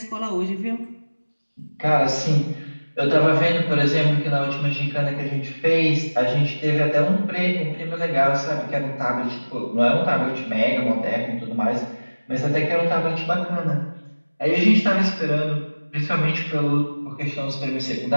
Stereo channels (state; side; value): inverted; both; correlation -1.00